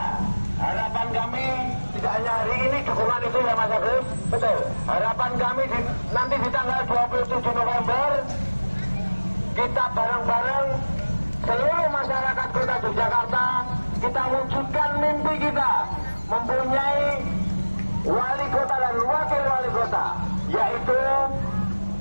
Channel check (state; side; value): inverted; both; correlation -1.00